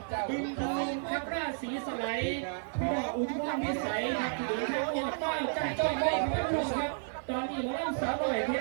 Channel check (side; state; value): left; silent; digital silence